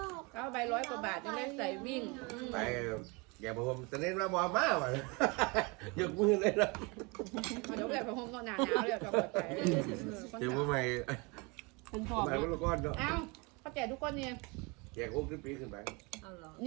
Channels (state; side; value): quieter; left; 28.4 dB